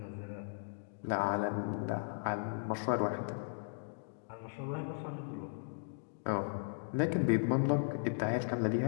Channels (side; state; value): right; silent; digital silence